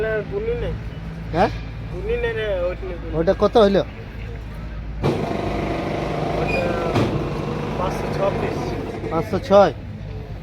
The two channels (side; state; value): both; identical; correlation 1.00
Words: গুনি নেই, হ্যাঁ গুনি নেই রে, ওইটা ওটা কত হইলো? 526। 506